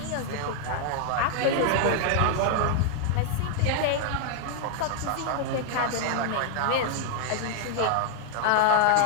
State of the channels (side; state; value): both; different; correlation 0.00